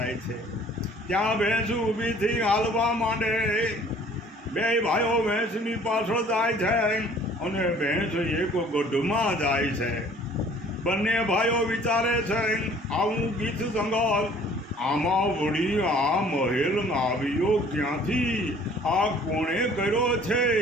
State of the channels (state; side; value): normal; both; correlation 0.54